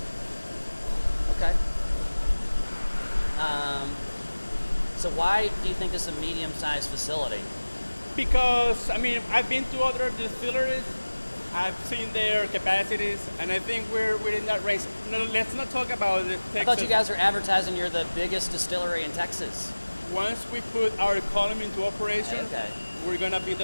Okay. So why do you think this is a medium-sized facility? Because, I mean, I've been to other distilleries, I've seen their capacities, and I think we're in that range. No, let's not talk about the Texas. I thought you guys were advertising you're the biggest distillery in Texas. Once we put our column into operation, Okay. we're gonna be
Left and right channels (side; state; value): both; inverted; correlation -1.00